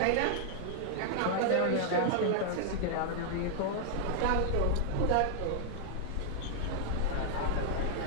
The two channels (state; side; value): different; both; correlation -0.01